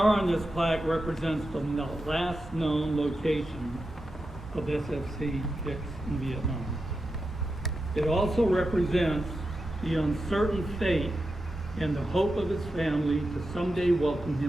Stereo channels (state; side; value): normal; both; correlation 0.89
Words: on this plaque represents the last known location of SFC Hicks in Vietnam. It also represents the uncertain fate and the hope of his family to someday welcome